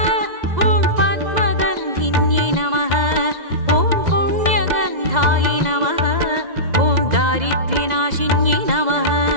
ॐ पद्मगन्धिन्यै नमः ॐ पुण्यगन्धायै नमः ॐ दारिद्र्यनाशिन्यै नमः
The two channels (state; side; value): late; left; 2.0 ms